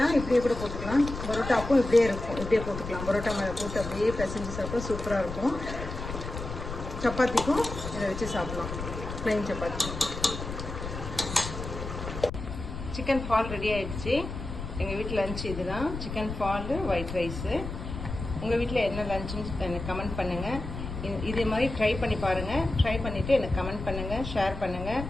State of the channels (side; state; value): left; noise; rumble, 7 dB below the sound